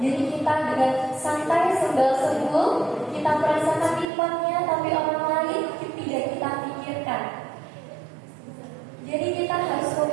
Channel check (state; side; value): drops out; left; at 4.0 s